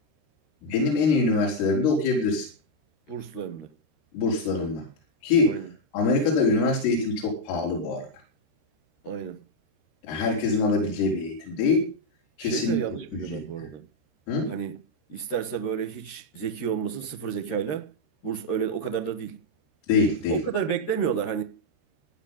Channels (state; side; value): late; right; 13 ms